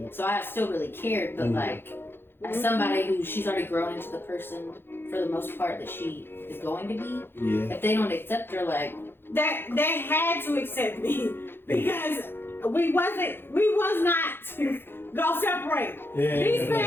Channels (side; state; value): right; late; 0.10 ms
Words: So I still really cared, but like as somebody who she's already grown into the person for the most part that she is going to be. If they don't accept her, like they had to accept me because we was not go separate. These